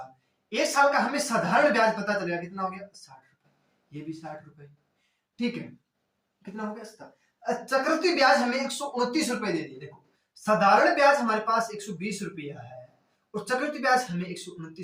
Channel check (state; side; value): identical; both; correlation 1.00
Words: 1 साल का हमें साधारण ब्याज पता चलेगा, कितना हो गया, 60 रुपए, ये भी 60 रुपए। ठीक है, कितना हो गया, चक्रवृद्धि ब्याज हमें 129 रुपए दे दिए। देखो साधारण ब्याज हमारे पास 120 रुपया है और चक्रवृद्धि ब्याज हमें